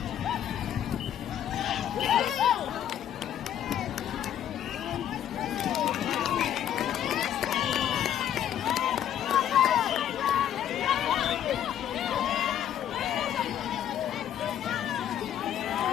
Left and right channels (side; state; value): right; quieter; 10.4 dB